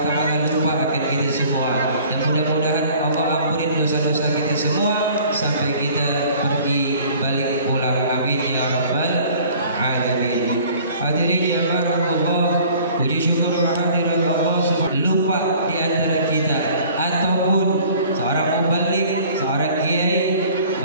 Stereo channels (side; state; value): both; inverted; correlation -0.51